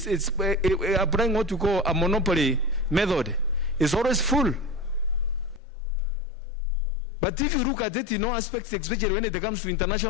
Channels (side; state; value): right; drops out; at 5.6 s